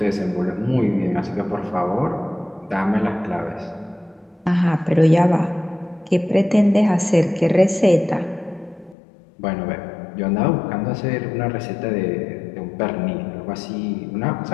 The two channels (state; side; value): drops out; right; at 9.0 s